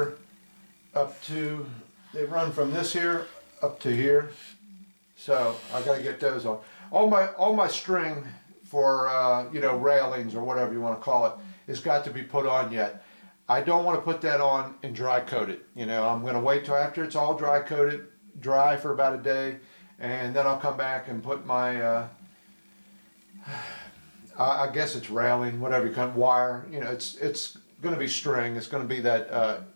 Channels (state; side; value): inverted; both; correlation -1.00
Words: up to, they run from this here up to here. So I got to get those on. All my string for you know, railings or whatever you want to call it has got to be put on yet. I don't want to put that on and dry coat it. You know, I'm going to wait till after it's all dry coated, dry for about a day, and then I'll come back and put my, I guess it's railing, whatever you call it, wire. You know, it's going to be string. It's going to be that